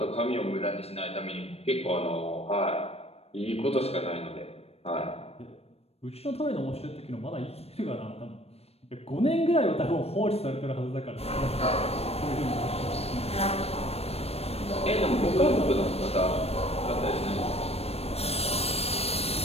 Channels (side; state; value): right; late; 0.29 ms